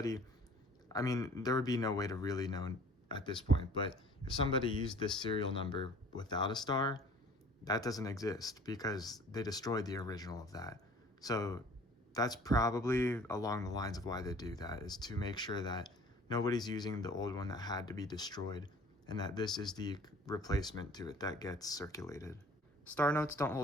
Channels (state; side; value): normal; both; correlation 0.49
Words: I mean, there would be no way to really know at this point, but if somebody used this serial number without a star, that doesn't exist because they destroyed the original of that. So that's probably along the lines of why they do that, is to make sure that nobody's using the old one that had to be destroyed, and that this is the replacement to it that gets circulated. Star notes don't